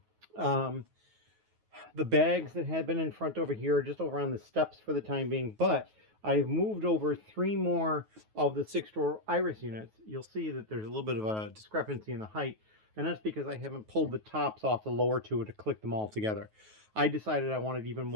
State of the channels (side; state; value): left; late; 9.3 ms